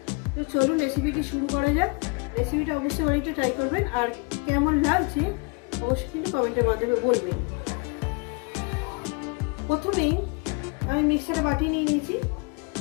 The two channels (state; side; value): quieter; right; 31.9 dB